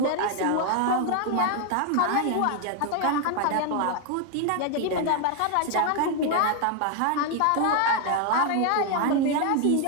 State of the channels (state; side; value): different; both; correlation 0.01